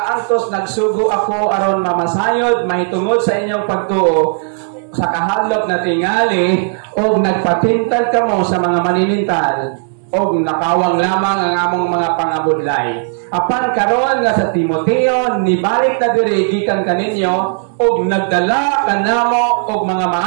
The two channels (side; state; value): left; silent; digital silence